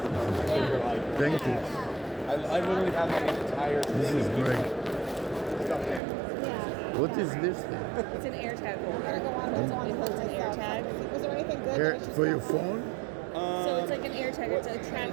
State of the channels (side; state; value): left; drops out; at 6.0 s